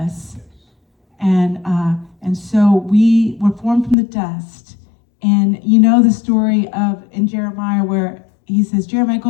And so we were formed from the dust. And you know the story of in Jeremiah where he says, Jeremiah,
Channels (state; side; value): drops out; right; at 4.0 s